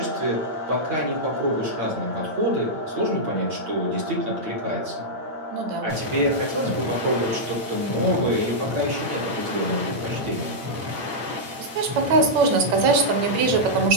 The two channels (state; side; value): late; left; 8.9 ms